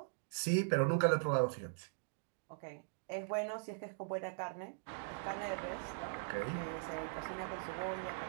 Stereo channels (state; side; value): silent; left; digital silence